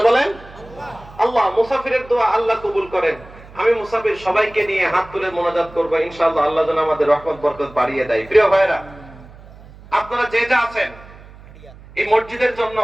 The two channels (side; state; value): right; noise; hum, 20 dB below the sound